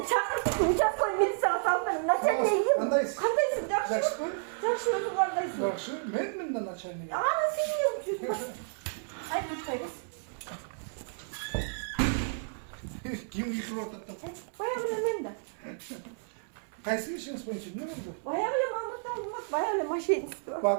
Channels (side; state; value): left; silent; 57 dB below the other